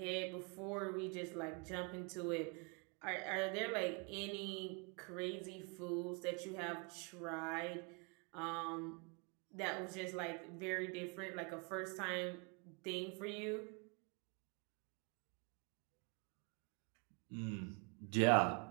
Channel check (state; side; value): quieter; left; 33.4 dB